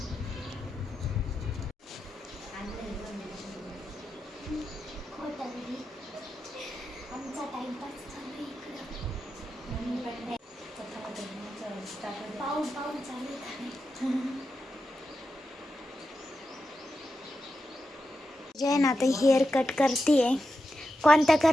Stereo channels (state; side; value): normal; both; correlation 0.89